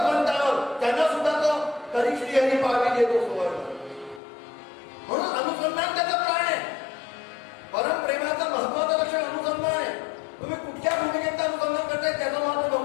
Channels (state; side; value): drops out; right; at 4.2 s